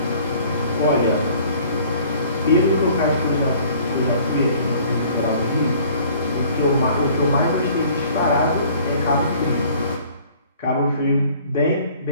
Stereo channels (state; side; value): inverted; both; correlation -0.54